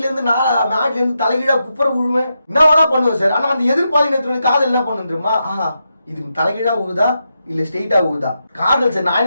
இருந்து மாடில இருந்து தலைகீழா குப்புற விழுவேன், என்ன வேணா பண்ணுவேன் சார். ஆனா அந்த எதிர்பாலினத்தினுடைய காதல் என்ன பண்ணு தெரியுமா? இது தலைகீழா உழுதா இல்ல ஸ்ட்ரெயிட்டா உழுதா, காதல் சார் நான்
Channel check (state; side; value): inverted; both; correlation -0.86